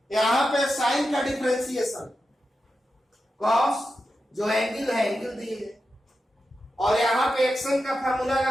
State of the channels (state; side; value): normal; both; correlation 0.90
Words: यहां पे साइन का डिफरेंशिएशन कॉस, जो एंगल है एंगल दिए, और यहां पे एक्शन का फार्मूला